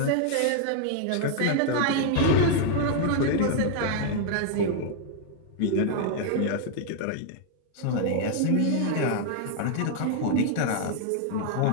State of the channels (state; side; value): different; both; correlation 0.00